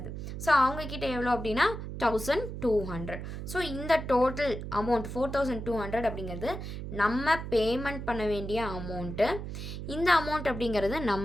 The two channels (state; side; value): noise; right; hum, 7 dB below the sound